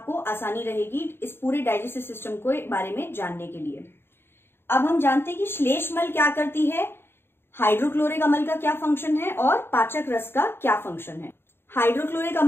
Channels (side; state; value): right; late; 0.11 ms